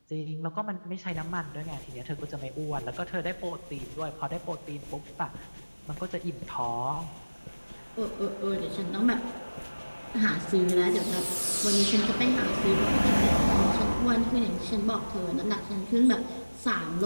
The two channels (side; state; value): both; inverted; correlation -1.00